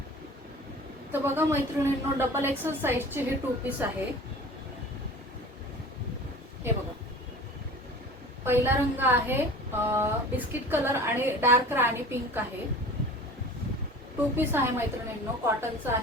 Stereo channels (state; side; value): normal; both; correlation 0.40